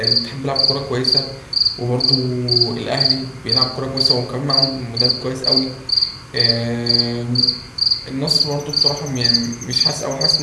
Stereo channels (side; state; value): both; identical; correlation 1.00